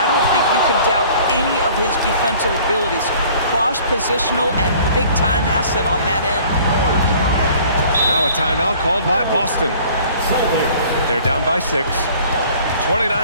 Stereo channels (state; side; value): inverted; both; correlation -0.52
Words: don't think you can doubt any of his defensive abilities. Cross-positional and big-time asset on that end. Now a timeout called by Boston. They're down by 6.